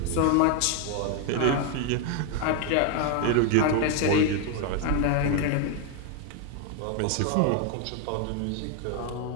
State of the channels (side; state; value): both; different; correlation 0.01